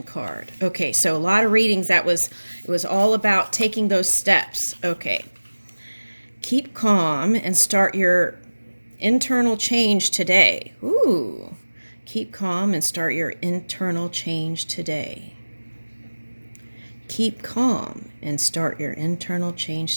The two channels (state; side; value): inverted; both; correlation -1.00